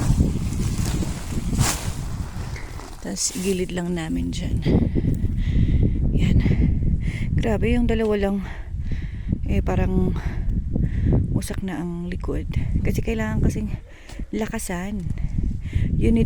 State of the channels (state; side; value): identical; both; correlation 1.00